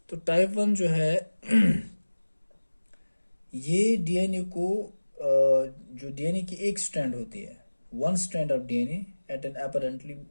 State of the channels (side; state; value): both; inverted; correlation -1.00